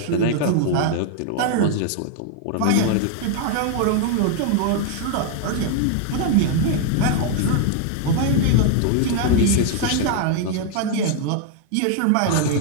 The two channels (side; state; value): both; different; correlation 0.00